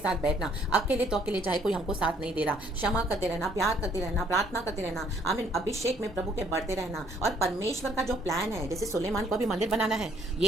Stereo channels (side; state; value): both; normal; correlation 0.64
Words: बैठना। अकेले तो अकेले, चाहे कोई हमको साथ नहीं दे रहा, क्षमा करते रहना, प्यार करते रहना, प्रार्थना करते रहना, आमीन, अभिषेक में प्रभु के बढ़ते रहना। और परमेश्वर का जो प्लान है, जैसे सुलेमान को अभी मंदिर बनाना है,